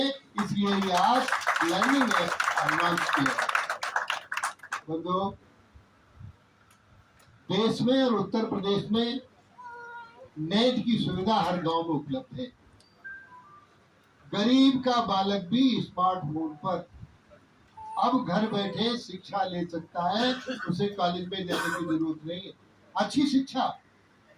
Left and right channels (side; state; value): both; identical; correlation 1.00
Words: इसलिए ये आज लर्निंग लॉन्च किया। बंधुओं, देश में और उत्तर प्रदेश में नेट की सुविधा हर गांव में उपलब्ध है। गरीब का बालक भी स्मार्टफोन पर अब घर बैठे शिक्षा ले सकता है, उसे कॉलेज में जाने की जरूरत नहीं है। अच्छी शिक्षा।